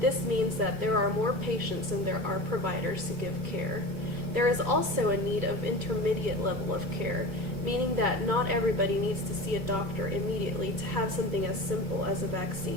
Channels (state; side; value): late; left; 2.2 ms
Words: This means that there are more patients than there are providers to give care. There is also a need of intermediate level of care, meaning that not everybody needs to see a doctor immediately to have something as simple as a